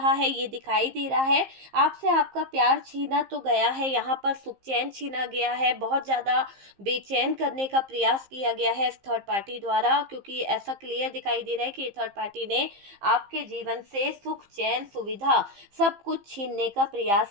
है, ये दिखाई दे रहा है। आपसे आपका प्यार छीना तो गया है, यहाँ पर सुख चैन छीना गया है, बहुत ज़्यादा बेचैन करने का प्रयास किया गया है इस थर्ड पार्टी द्वारा, क्योंकि ऐसा क्लियर दिखाई दे रहा है कि थर्ड पार्टी ने आपके जीवन से सुख चैन सुविधा सब कुछ छीनने का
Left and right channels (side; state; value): left; late; 15 ms